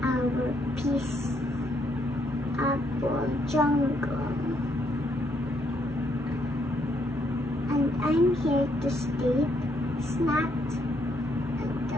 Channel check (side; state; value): both; normal; correlation 0.73